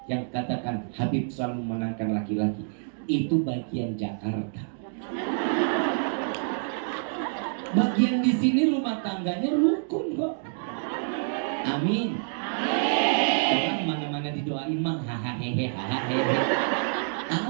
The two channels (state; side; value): silent; left; digital silence